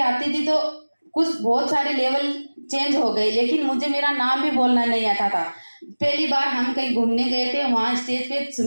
आती थी, तो कुछ बहुत सारे लेवल चेंज हो गए, लेकिन मुझे मेरा नाम भी बोलना नहीं आता था। पहली बार हम कहीं घूमने गए थे, वहाँ स्टेज पे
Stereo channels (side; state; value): both; inverted; correlation -1.00